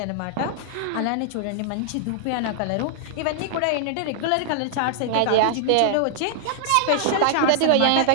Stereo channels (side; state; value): both; different; correlation -0.01